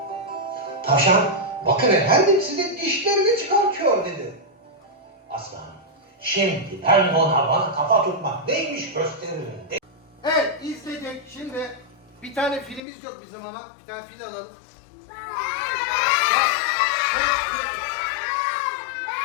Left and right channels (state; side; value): drops out; right; at 12.8 s